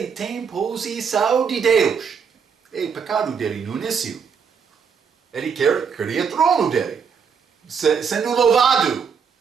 tem posição de Deus. É o pecado dele no início. Ele queria trono dele, sendo louvado.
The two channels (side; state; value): left; quieter; 6.4 dB